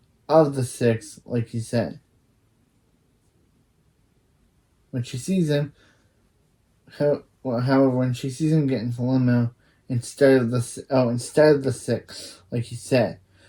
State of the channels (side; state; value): both; identical; correlation 1.00